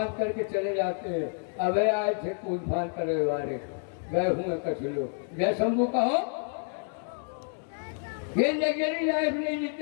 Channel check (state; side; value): silent; right; 59 dB below the other